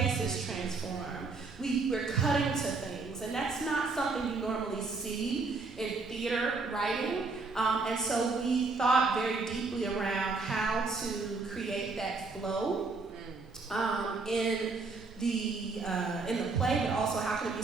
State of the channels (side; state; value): left; quieter; 4.0 dB